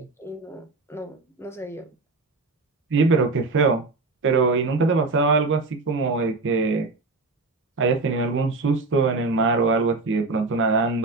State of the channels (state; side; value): quieter; left; 3.6 dB